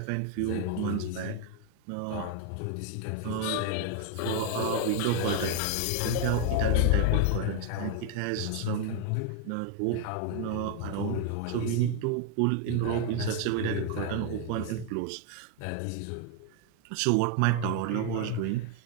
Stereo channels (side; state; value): both; different; correlation 0.01